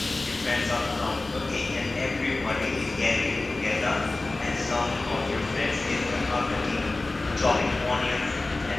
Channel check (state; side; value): quieter; right; 3.1 dB